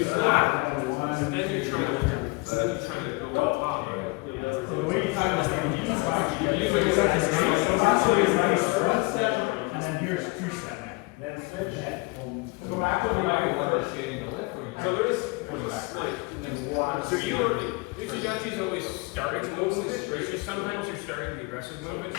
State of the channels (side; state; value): right; quieter; 25.8 dB